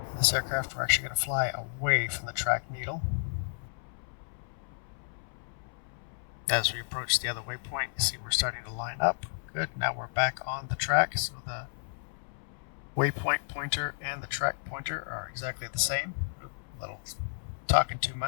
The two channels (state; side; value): silent; right; 56 dB below the other